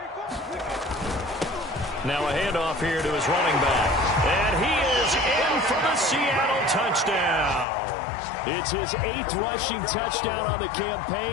Now a handoff here to his running back. And he is in for the Seattle touchdown. It's his 8th rushing touchdown on the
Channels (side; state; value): right; drops out; at 7.7 s